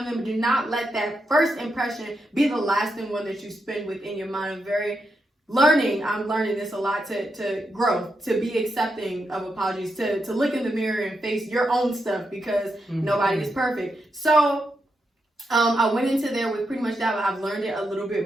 member. Do not let that first impression be the lasting one that you spend within your mind. I'm learning this a lot, to grow, to be accepting of apologies, to look in the mirror and face your own stuff, because nobody is perfect. So I went into there with pretty much that, but I've learned it a little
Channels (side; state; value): both; normal; correlation 0.84